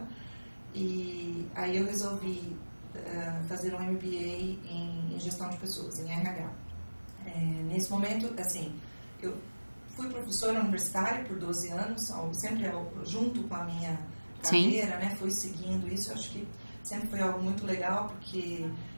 E aí eu resolvi fazer um MBA em gestão de pessoas, em RH. Nesse momento, assim, eu fui professora universitária por 12 anos, sempre junto com a minha carreira, né? Fui seguindo isso. Eu acho que sempre foi algo muito legal, porque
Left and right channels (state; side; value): inverted; both; correlation -1.00